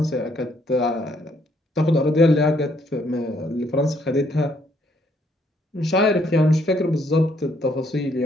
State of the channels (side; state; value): both; normal; correlation 0.69